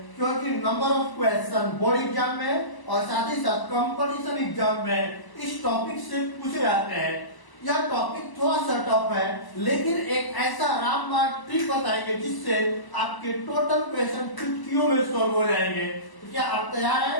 क्योंकि number of question board exam में और साथ ही साथ कंपटीशन एग्जाम में इस टॉपिक से पूछे जाते हैं। यह टॉपिक थोड़ा सा टफ है, लेकिन एक ऐसा रामबाण ट्रिक बताएंगे जिससे आपके टोटल क्वेश्चन चुटकियों में सॉल्व हो जाएंगे। तो क्या आप तैयार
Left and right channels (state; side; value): late; right; 1.0 ms